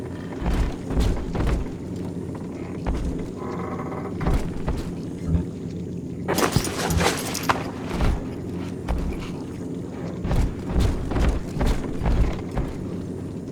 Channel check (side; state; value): both; identical; correlation 1.00